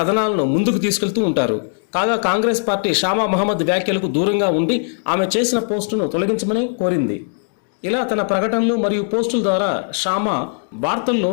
ముందుకు తీసుకెళ్తూ ఉంటారు. కాగా కాంగ్రెస్ పార్టీ షామా మొహమ్మద్ వ్యాఖ్యలకు దూరంగా ఉండి ఆమె చేసిన పోస్టును తొలగించమని కోరింది. ఇలా తన ప్రకటనలు మరియు పోస్టుల ద్వారా షామా వార్తల్లో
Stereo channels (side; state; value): right; silent; digital silence